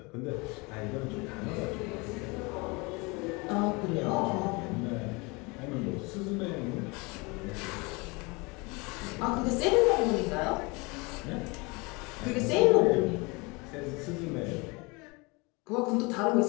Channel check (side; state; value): right; quieter; 27.1 dB